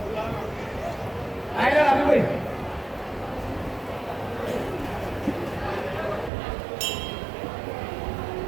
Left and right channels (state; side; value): drops out; left; at 6.3 s